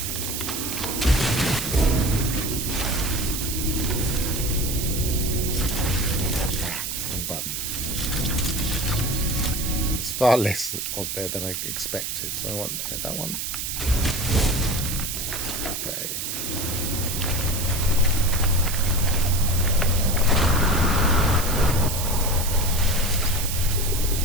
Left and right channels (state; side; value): noise; right; hiss, 3 dB below the sound